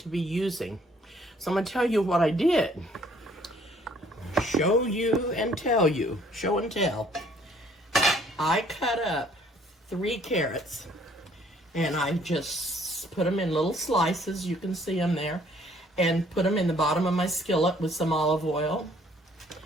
be using. So I'm going to tell you what I did. Show you and tell you. Show and tell. I cut up 3 carrots and I just put them in little slices. You can see them there. And put them in the bottom of my skillet with some olive oil.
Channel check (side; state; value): both; normal; correlation 0.61